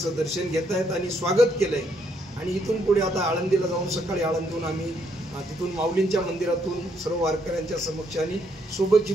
दर्शन घेत आहेत आणि स्वागत केलं आहे. आणि इथून पुढे आता आळंदीला जाऊन सकाळी आळंदीहून आम्ही तिथून माऊलींच्या मंदिरातून सर्व वारकऱ्यांच्या समक्ष आणि सोबत जी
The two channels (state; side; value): normal; both; correlation 0.73